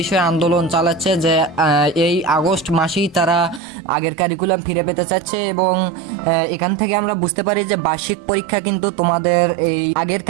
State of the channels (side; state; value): left; drops out; at 3.6 s